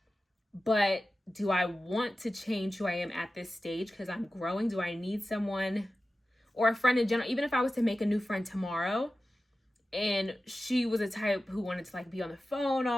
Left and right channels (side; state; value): both; normal; correlation 0.95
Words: But do I want to change who I am at this stage because I'm growing? Do I need someone or a friend in general? Even if I was to make a new friend tomorrow and she was a type who wanted to like be on the phone